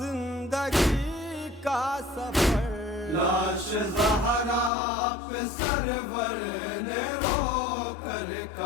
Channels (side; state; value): right; drops out; at 4.7 s